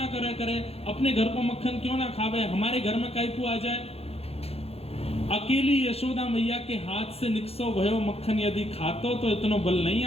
करे, अपने घर को मक्खन क्यों ना खावे, हमारे घर में काई को आ जाए। अकेली यशोदा मैया के हाथ से निकसो भयो मक्खन यदि खातो तो इतनो बल नहीं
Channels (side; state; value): right; late; 0.29 ms